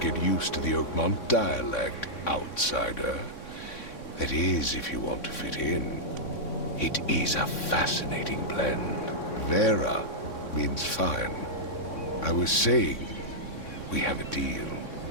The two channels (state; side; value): late; right; 3.6 ms